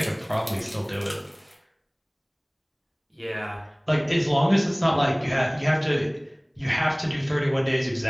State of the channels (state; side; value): identical; both; correlation 1.00